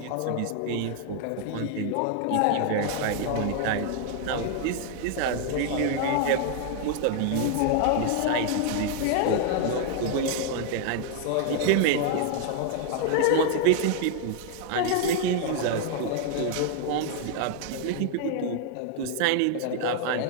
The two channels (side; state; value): both; different; correlation 0.00